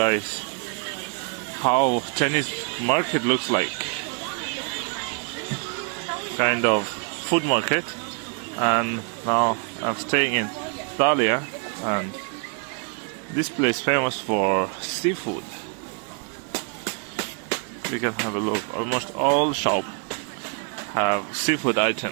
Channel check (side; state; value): left; quieter; 38.1 dB